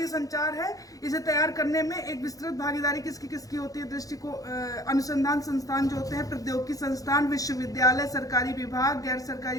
संचार है इसे तैयार करने में एक विस्तृत भागीदारी किसकी होती है? दृष्टिकोण अनुसंधान संस्थान जो होते हैं, प्रौद्योगिकी संस्थान, विश्वविद्यालय, सरकारी विभाग, गैर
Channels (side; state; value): right; late; 0.17 ms